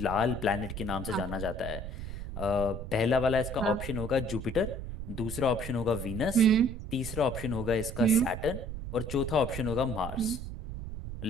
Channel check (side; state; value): right; noise; rumble, 7 dB below the sound